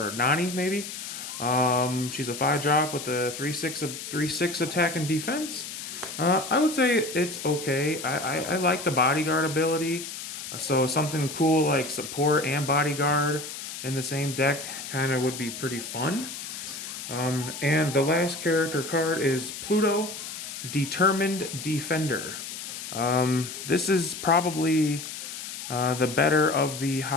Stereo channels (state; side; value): noise; left; hiss, 9 dB below the sound